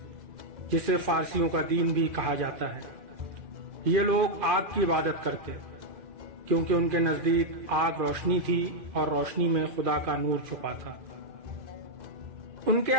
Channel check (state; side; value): late; left; 2.4 ms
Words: جسے فارسیوں کا دین بھی کہا جاتا ہے۔ یہ لوگ آگ کی عبادت کرتے کیونکہ ان کے نزدیک آگ روشنی تھی اور روشنی میں خدا کا نور چھپا تھا۔ ان کے